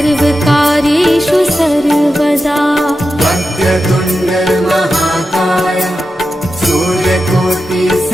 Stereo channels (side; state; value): both; normal; correlation 0.90